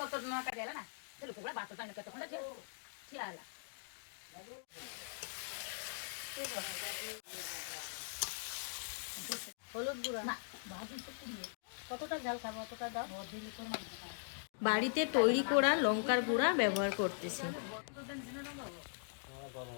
হলুদ গুঁড়া, কতটা ঝাল খাবো অতটা দাও। বাড়িতে তৈরি করা লঙ্কার গুঁড়া ব্যবহার করতেছি।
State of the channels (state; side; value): silent; right; digital silence